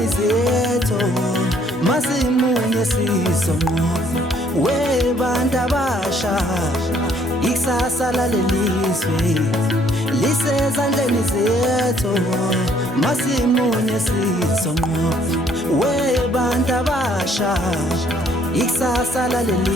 zethu, masimunye sizonqoba webantu abasha. Ikusasa lalelizwe lisezandleni zethu, masimunye sizonqoba webantu abasha. Ikusasa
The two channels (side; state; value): both; normal; correlation 0.64